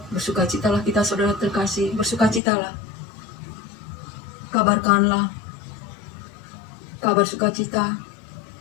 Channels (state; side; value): drops out; right; at 2.4 s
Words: Bersukacitalah kita, saudara terkasih, bersukacitalah. Kabarkanlah kabar sukacita,